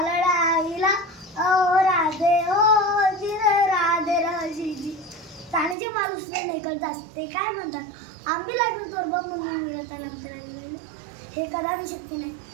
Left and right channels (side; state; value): left; drops out; at 5.8 s